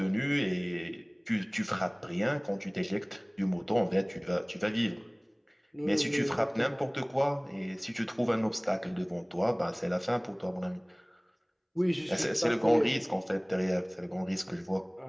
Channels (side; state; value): both; identical; correlation 1.00